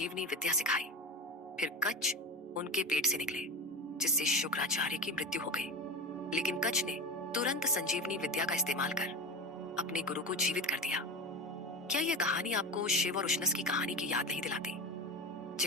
विद्या सिखाई। फिर कच्छ उनके पेट से निकले, जिससे शुक्राचार्य की मृत्यु हो गई। लेकिन कच्छ ने तुरंत संजीवनी विद्या का इस्तेमाल कर अपने गुरु को जीवित कर दिया। क्या यह कहानी आपको शिव और उशनस की कहानी की याद नहीं दिलाती?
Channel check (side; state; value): both; normal; correlation 0.23